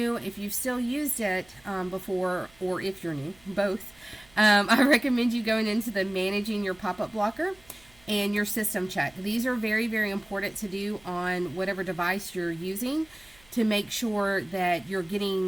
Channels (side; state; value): right; noise; hum, 28 dB below the sound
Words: if you've still used it before, or if you're new, both, I recommend you going into the Managing Your Pop-Up Blocker and your System Check. These are very, very important to do on whatever device you're using, to make sure that you're